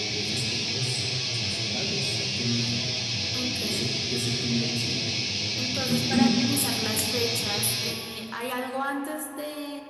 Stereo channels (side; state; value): both; identical; correlation 1.00